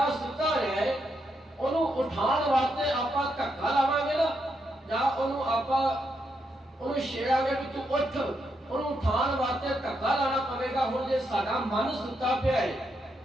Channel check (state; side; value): normal; both; correlation 0.80